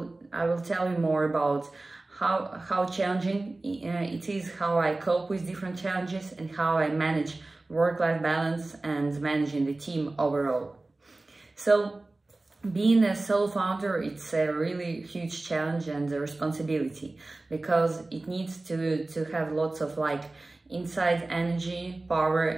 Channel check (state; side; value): quieter; left; 3.0 dB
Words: will tell you more about how challenging it is, how I cope with different challenges, and how I manage work-life balance and managing the team overall. So being a solo founder, it's a really huge challenge and a responsibility because it needs to have lots of inside energy,